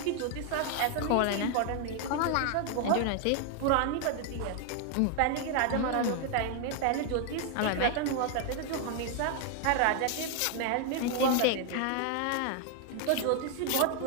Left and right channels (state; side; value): different; both; correlation 0.00